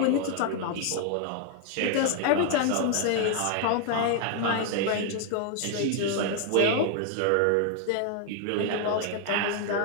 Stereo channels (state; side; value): different; both; correlation 0.00